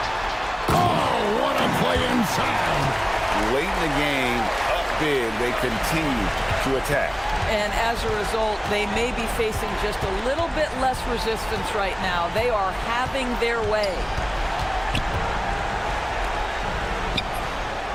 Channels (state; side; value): identical; both; correlation 1.00